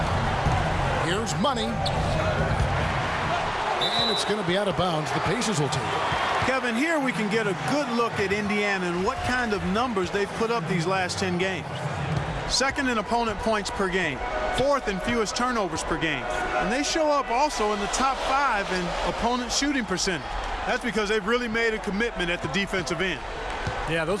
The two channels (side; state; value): both; identical; correlation 1.00